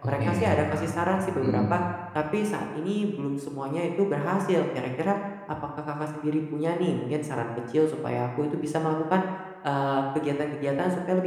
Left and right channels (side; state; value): both; identical; correlation 1.00